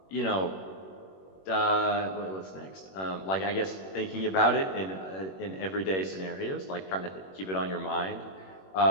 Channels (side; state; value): right; late; 21 ms